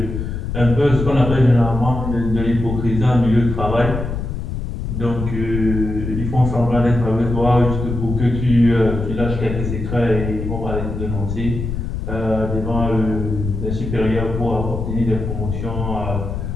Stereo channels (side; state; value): left; noise; rumble, 4 dB below the sound